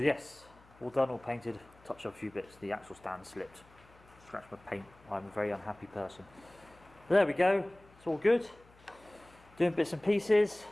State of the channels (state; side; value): noise; left; hum, 27 dB below the sound